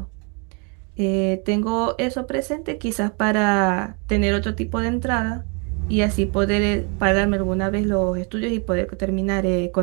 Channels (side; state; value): left; quieter; 34.8 dB